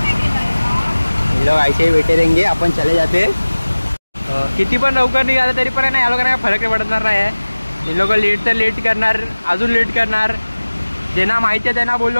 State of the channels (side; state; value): both; inverted; correlation -1.00